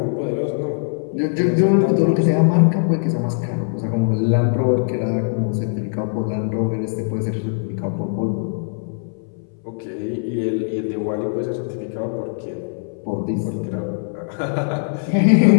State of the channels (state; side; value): silent; right; 65 dB below the other